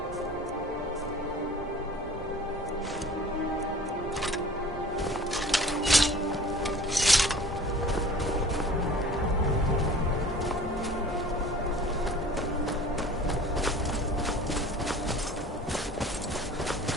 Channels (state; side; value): normal; both; correlation 0.45